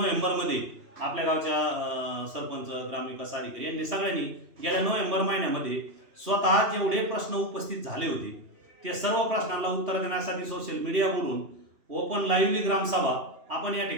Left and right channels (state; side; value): late; left; 3.0 ms